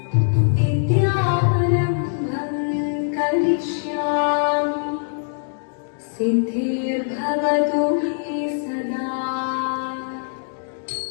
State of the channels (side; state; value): right; silent; digital silence